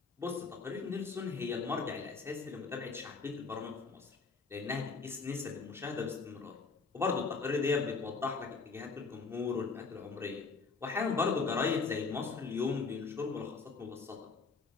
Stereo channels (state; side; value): quieter; right; 4.5 dB